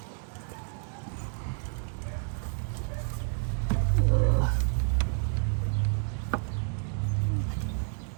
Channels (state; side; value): silent; left; 58 dB below the other